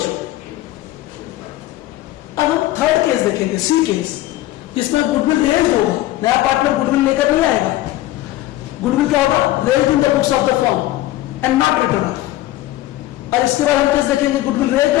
अब हम थर्ड केस देखेंगे, सी केस, इसमें गुडविल रेज होगा, नया पार्टनर गुडविल लेकर नहीं आएगा, गुडविल क्या होगा, raise in the books of the firm and not return off. और इसके बाद हम केस देखेंगे goodwill raise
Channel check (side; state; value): right; quieter; 15.5 dB